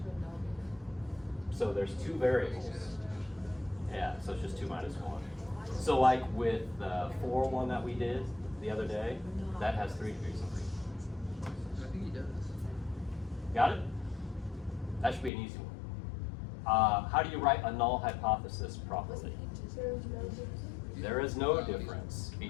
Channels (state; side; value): drops out; right; at 15.3 s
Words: So there's 2 variables. Yeah, so it's just 2 minus 1. So like with the 4 one that we did the other day, that has 3 degrees of freedom. I think he does. Got it? That should be an easy one. How do you write a null hypothesis properly? There is no difference